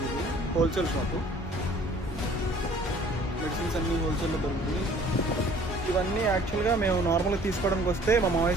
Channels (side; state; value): both; normal; correlation 0.53